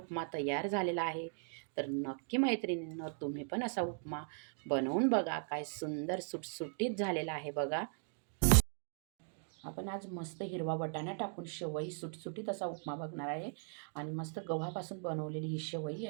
तयार झालेला आहे. तर नक्की मैत्रिणींनो, तुम्ही पण असा उपमा बनवून बघा. काय सुंदर सुटसुटीत झालेला आहे बघा. आपण आज मस्त हिरवा वाटाणा टाकून शेवई सुटसुटीत असा उपमा बघणार आहे. आणि मस्त गव्हापासून बनवलेली ही शेवई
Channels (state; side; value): silent; left; 52 dB below the other